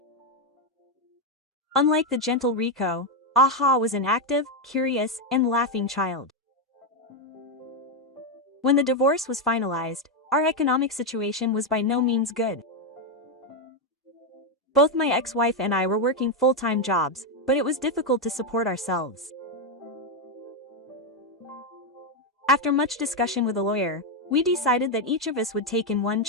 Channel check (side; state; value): both; normal; correlation 0.04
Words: Unlike the gentle Riko, Aha was an active, curious, and laughing child. When the divorce was finalized, our economic situation was by no means good. Both my ex-wife and I were working full-time jobs, but it was difficult to support ourselves. After much discussion with a lawyer, we decided that each of us would take in one